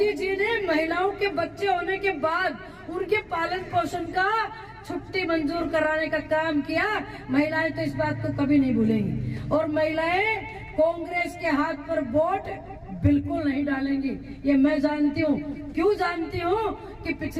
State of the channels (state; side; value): identical; both; correlation 1.00